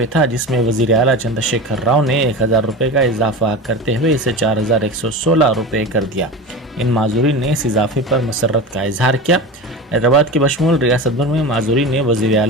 था, जिसमें वज़ीर आला चंद्रशेखर राव ने 1000 रुपये का इजाफा करते हुए इसे 4116 रुपये कर दिया। इन माजूरीन ने इस इजाफे पर मसरत का इजहार किया। हैदराबाद के बशमूल रियासत भर में माजूरीन ने वज़ीर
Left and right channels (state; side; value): normal; both; correlation 0.28